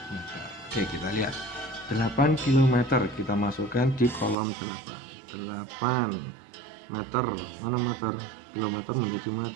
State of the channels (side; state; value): left; drops out; at 4.4 s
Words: meter. Oke, kita lihat 8 km kita masukkan di kolom 8 meter. Mana meter? Kilometer menjadi